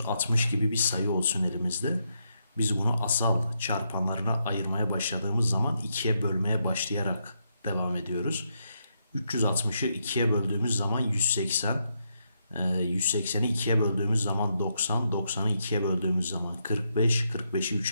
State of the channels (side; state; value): both; inverted; correlation -0.80